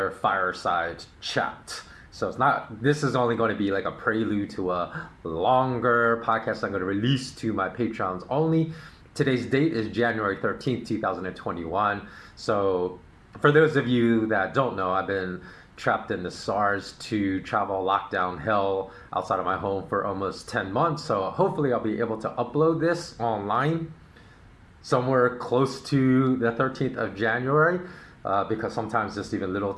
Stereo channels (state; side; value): identical; both; correlation 1.00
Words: fireside chat. So this is only going to be like a prelude to a longer podcast I'm going to release to my Patreons only. Today's date is January 13th, 2021. So for those of you that don't know, I've been trapped in the SARS-2 travel lockdown hell outside of my home for almost 10 months. So hopefully I'll be able to upload this online somewhere close to the 13th of January, because sometimes just even little